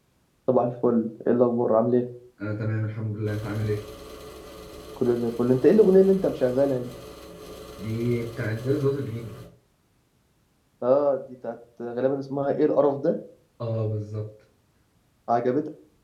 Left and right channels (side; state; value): both; identical; correlation 1.00